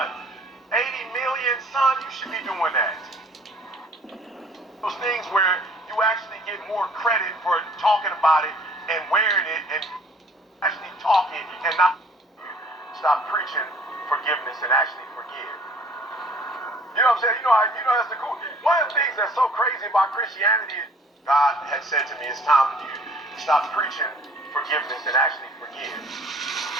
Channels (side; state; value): both; normal; correlation 0.54